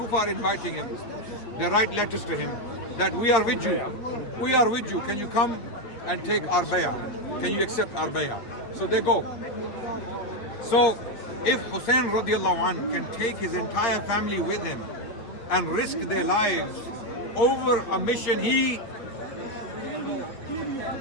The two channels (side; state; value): right; late; 9.0 ms